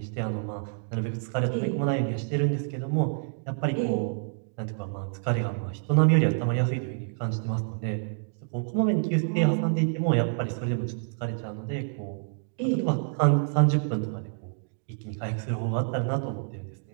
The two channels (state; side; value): silent; left; digital silence